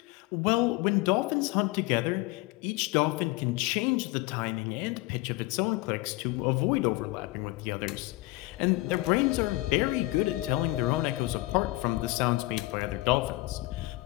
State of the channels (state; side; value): quieter; right; 20.4 dB